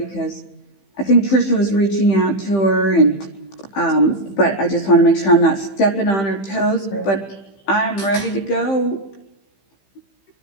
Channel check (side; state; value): right; late; 15 ms